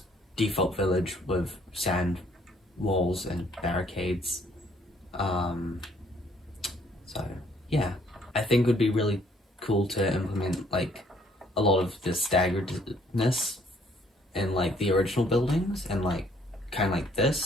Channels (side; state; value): both; normal; correlation 0.64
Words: default village with sand walls and barricades. So yeah, I think it would be really cool to implement like a lot of the staggeredness in like the original buildings, and like kind of like